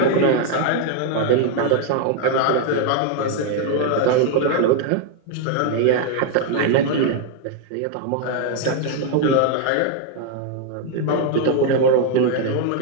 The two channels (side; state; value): both; different; correlation 0.00